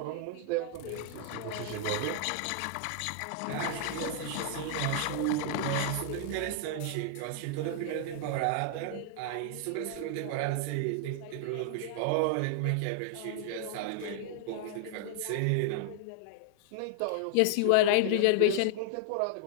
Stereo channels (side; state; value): both; different; correlation 0.00